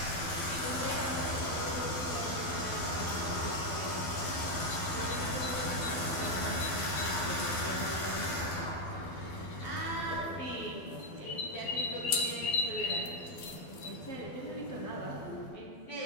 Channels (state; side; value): late; right; 12 ms